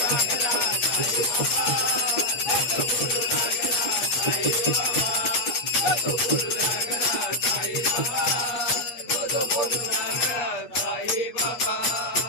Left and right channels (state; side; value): late; right; 8.4 ms